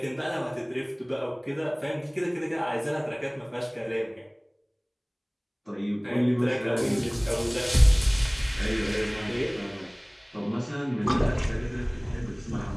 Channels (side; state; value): both; identical; correlation 1.00